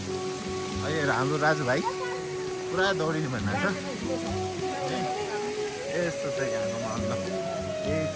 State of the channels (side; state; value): both; identical; correlation 1.00